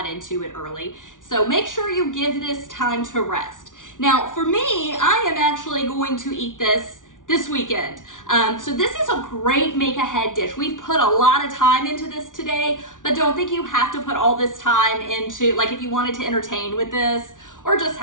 into it early. So make sure you give this time to rest. Now, for me, I am actually going to eat this weekend. So this is a great make-ahead dish. We've put a lot of time into this today, but don't think you have to put all this time into, like if you wanted to entertain with this or just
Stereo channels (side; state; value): right; late; 0.88 ms